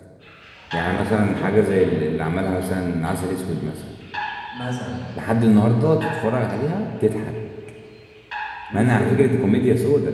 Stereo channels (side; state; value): both; identical; correlation 1.00